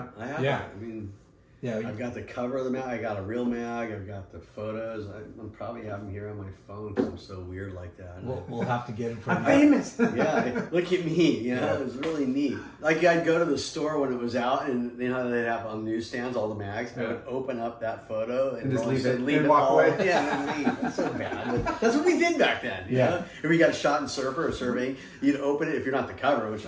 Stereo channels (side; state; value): both; identical; correlation 1.00